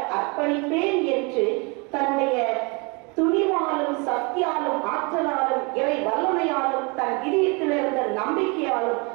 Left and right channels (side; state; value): left; quieter; 30.0 dB